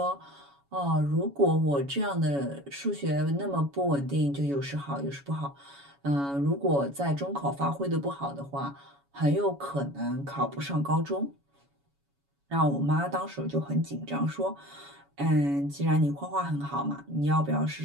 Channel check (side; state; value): left; late; 7.1 ms